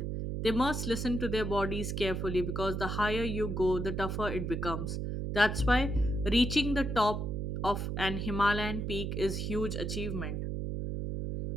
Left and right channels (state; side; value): noise; right; hum, 2 dB below the sound